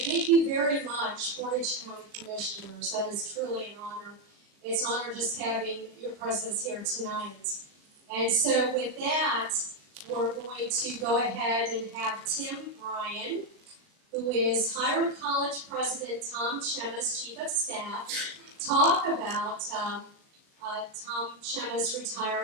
you very much, Portage County Commissioners. That is truly an honor. It's an honor just having your presence here tonight. And so with that, we're going to go ahead and have Tim Bryan, who is Hiram College President Tom Chema's Chief of Staff, talk about Tom Chema's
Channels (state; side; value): late; left; 38 ms